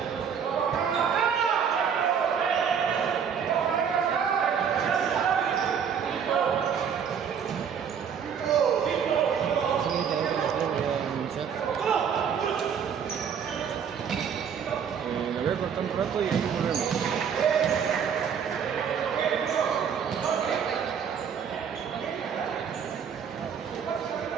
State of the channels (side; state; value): left; quieter; 7.4 dB